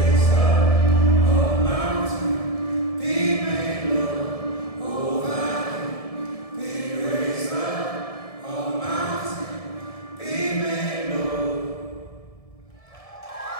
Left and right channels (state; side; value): late; right; 1.7 ms